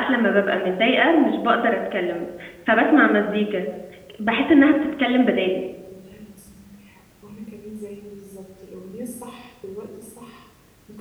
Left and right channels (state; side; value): identical; both; correlation 1.00